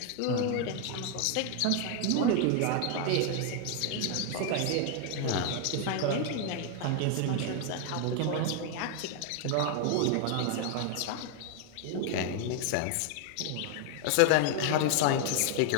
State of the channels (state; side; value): different; both; correlation 0.00